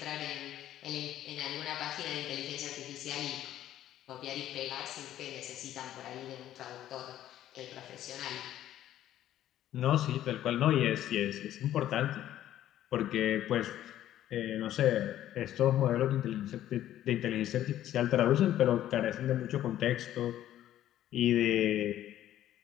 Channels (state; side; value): quieter; right; 12.4 dB